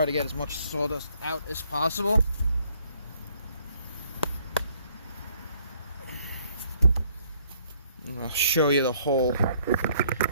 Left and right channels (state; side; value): inverted; both; correlation -0.65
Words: to get as much sawdust out as possible. And I'll show you the hole.